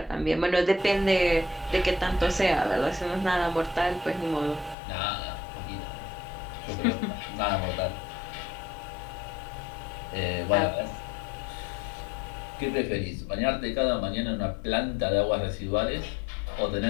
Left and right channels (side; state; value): right; drops out; at 4.8 s